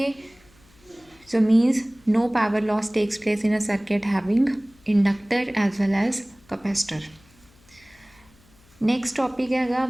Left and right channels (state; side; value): noise; left; hum, 29 dB below the sound